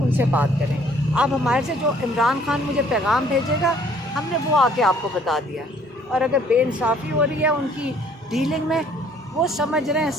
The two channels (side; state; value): both; normal; correlation 0.59